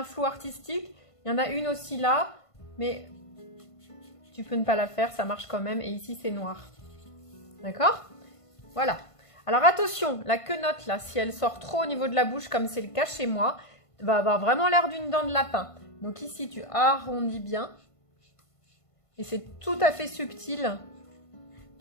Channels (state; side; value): late; right; 1.5 ms